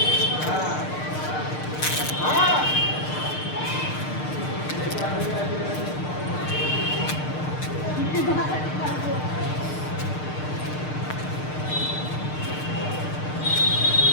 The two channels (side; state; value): right; late; 6.6 ms